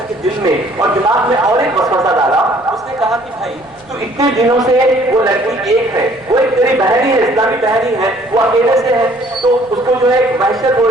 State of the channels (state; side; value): noise; right; rumble, 29 dB below the sound